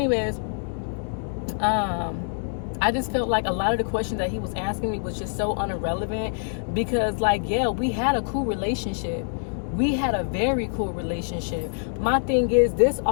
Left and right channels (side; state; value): right; silent; digital silence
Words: I just felt like a lot of the questions that he was asking me was just so irrelevant, because, like, yeah, we had a cool relationship. We had a very cool relationship. My thing is, this